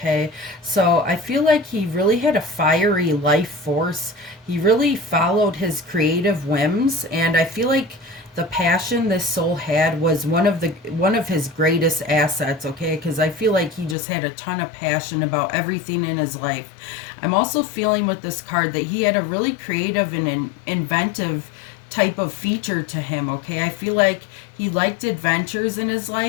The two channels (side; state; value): right; drops out; at 14.0 s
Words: So I feel like he really had a fiery life force. He really followed his creative whims, and I feel like the passion this soul had was one of his greatest assets, okay? Because I feel like he just had a ton of passion about everything in his life. I'm also feeling with this card that he had a really creative and inventive type of feature to him, okay? I feel like he liked adventures in his